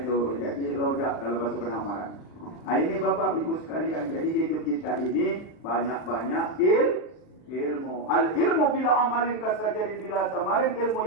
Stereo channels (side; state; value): right; late; 39 ms